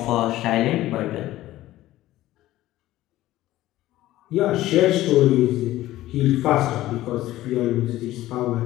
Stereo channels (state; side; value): quieter; right; 15.5 dB